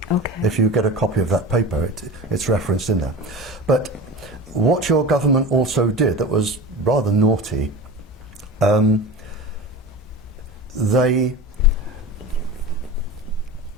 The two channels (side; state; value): both; normal; correlation 0.32